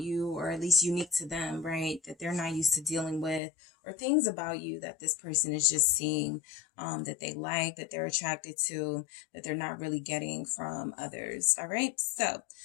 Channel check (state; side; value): drops out; right; at 3.4 s